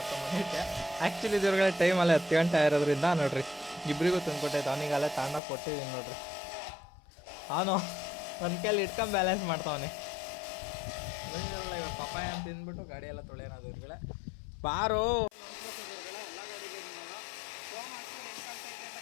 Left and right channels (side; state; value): right; drops out; at 5.4 s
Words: ಬಂದಿದ್ದೆ. ಆ್ಯಕ್ಚುಲಿ ದೇವ್ರುಗಳೇ ಟೈಮಲ್ಲೇ 10 ಗಂಟೆ ಆಗಿರೋದ್ರಿಂದ ನೋಡ್ರಿ ಇಬ್ಬರಿಗೂ ತಂದುಕೊಟ್ಟೈತೆ. ಅವನಿಗೆಲ್ಲ ತಗೊಂಡೋಗಿ ಕೊಟ್ಟಿದ್ದೀನಿ ನೋಡ್ರಿ. ಅವನು ಒಂದು ಕೈಲಿ ಇಟ್ಕೊಂಡು ಬ್ಯಾಲೆನ್ಸ್ ಮಾಡ್ತಾವನೆ. ಇವಾಗ ಪಪ್ಪಾಯ ಅಂತ ತಿಂದ್ಬಿಟ್ಟು ಗಾಡಿ ಎಲ್ಲ ತೊಳೆಯೋಣ ದೇವ್ರುಗಳೇ. ಬಾರು